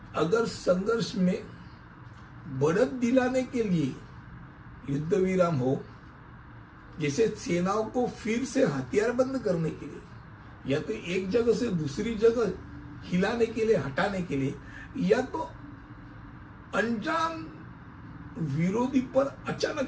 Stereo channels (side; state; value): both; identical; correlation 1.00